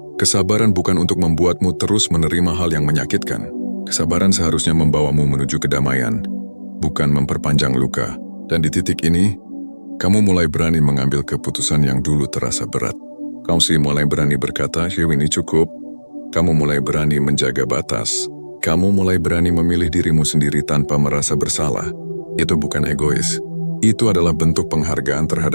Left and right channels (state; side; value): inverted; both; correlation -1.00